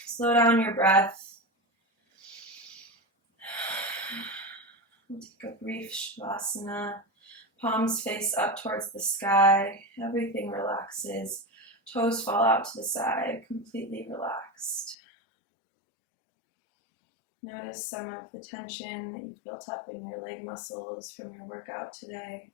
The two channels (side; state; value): right; drops out; at 15.0 s